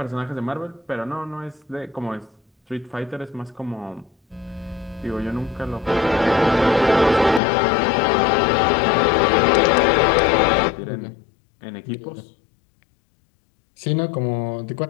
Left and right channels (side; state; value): right; drops out; at 7.4 s